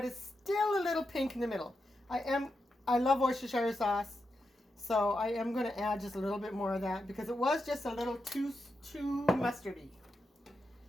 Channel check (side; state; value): both; normal; correlation 0.87